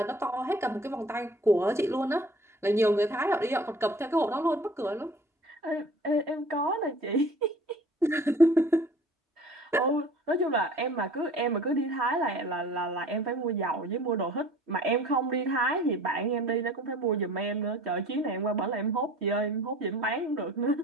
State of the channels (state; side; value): normal; both; correlation 0.47